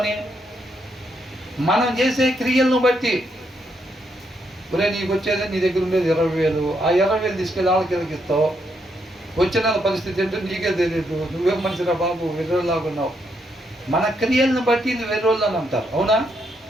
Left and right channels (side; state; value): both; normal; correlation 0.77